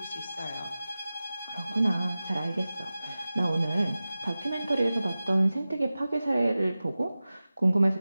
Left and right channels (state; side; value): inverted; both; correlation -0.96